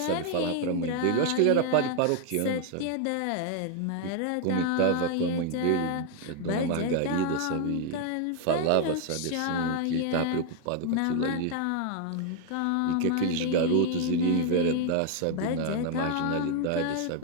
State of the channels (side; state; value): both; different; correlation 0.00